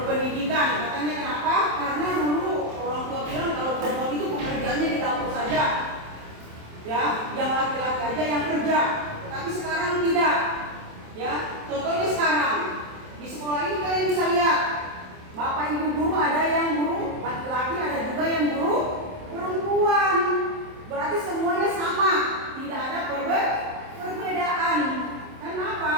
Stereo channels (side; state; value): left; late; 27 ms